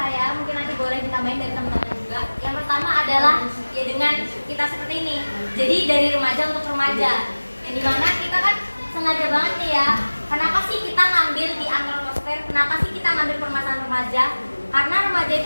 mungkin nanti boleh ditambahin dari teman-teman juga. Yang pertama adalah ya dengan kita seperti ini. Jadi dari remaja untuk remaja. Yang dimana kita kan sengaja banget nih ya. Kenapa sih kita ngambil di antroposfer? Kenapa sih kita ngambil permasalahan remaja? Karena remaja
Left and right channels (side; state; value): both; inverted; correlation -1.00